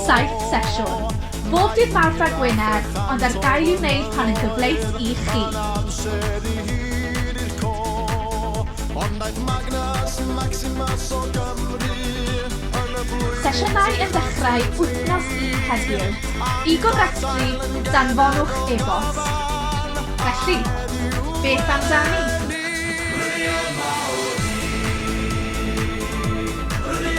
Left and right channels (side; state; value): both; identical; correlation 1.00